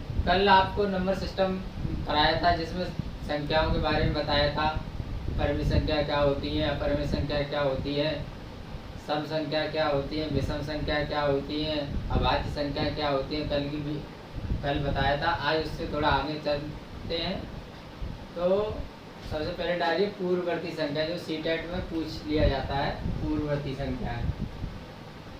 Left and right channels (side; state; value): both; identical; correlation 1.00